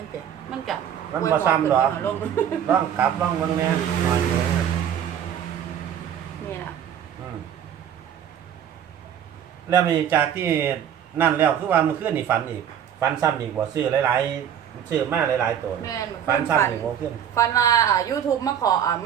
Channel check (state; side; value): quieter; left; 9.3 dB